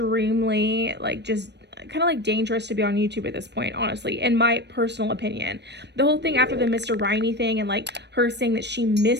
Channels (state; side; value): late; left; 0.50 ms